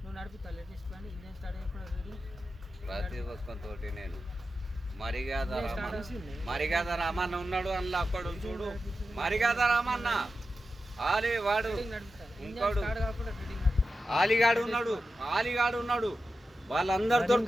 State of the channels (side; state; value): both; normal; correlation 0.91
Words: ప్రతి ఒక్కరితోటి నేను మరిగాద రామన్న ఉన్నాడు అందులో అక్కడ చూడు. మరిగాద రామన్న వాడు ఇంకోడు ఆలిగాడు ఉన్నాడు వాళ్ళందరూ